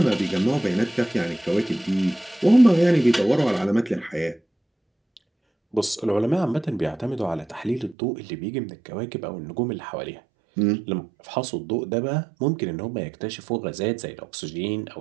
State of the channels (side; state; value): left; drops out; at 8.0 s